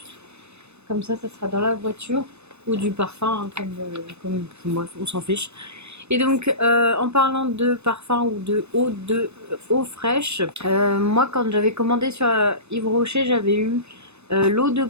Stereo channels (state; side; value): late; left; 0.81 ms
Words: Comme ça sera dans la voiture. Ou du parfum, hein, comme bref, on s'en fiche. Et donc, en parlant de parfum ou de eau fraîche, moi quand j'avais commandé sur Yves Rocher, j'avais eu l'eau de